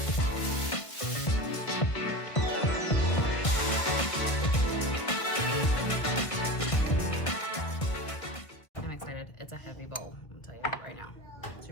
It's a heavy bowl, I'll tell you that right now.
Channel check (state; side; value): late; right; 1.5 ms